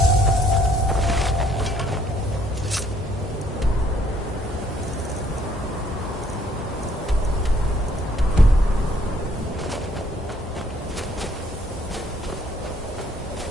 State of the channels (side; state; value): both; normal; correlation 0.64